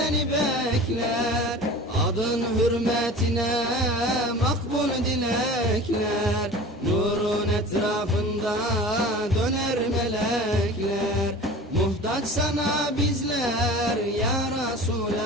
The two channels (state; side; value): normal; both; correlation 0.38